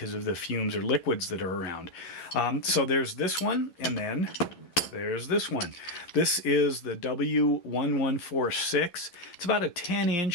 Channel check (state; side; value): late; right; 11 ms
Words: of the fumes or liquids that are around. So there's this one, and then there's this one. This is the W1146. It's about a